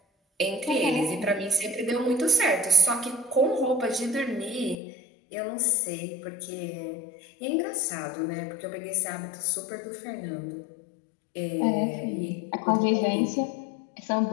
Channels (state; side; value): drops out; right; at 4.8 s